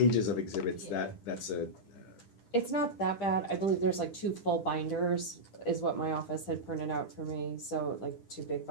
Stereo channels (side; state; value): right; late; 10 ms